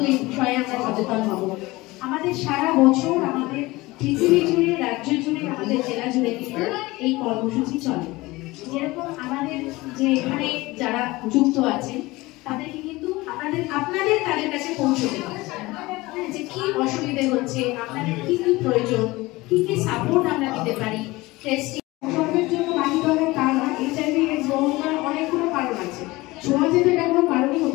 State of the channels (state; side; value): quieter; right; 20.8 dB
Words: এই বিষয়ে আমরা সচেতন হব। আমাদের সারা বছর আমাদের পৃথিবী জুড়ে, রাজ্য জুড়ে, আমাদের জেলা জুড়ে কিন্তু এই কর্মসূচি চলে। যেরকম আমাদের যে এখানে যারা যুক্ত আছেন তাদেরকে কিন্তু আপনাদের তাদের কাছে পৌঁছতে হবে যে কি অসুবিধে হচ্ছে, আপনাদের কি কি প্রয়োজন, কি কি সাপোর্ট আমরা দিতে পারি। টেস্টিং সর্বের জন্য বাকি ধরনের কারণ এইচআইভি এডস হওয়ার অনেকগুলো কারণ আছে, সমাজে তো এটা কোনো কারণই